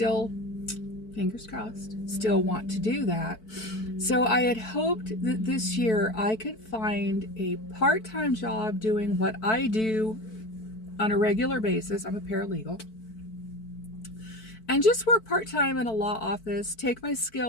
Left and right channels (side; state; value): right; late; 4.5 ms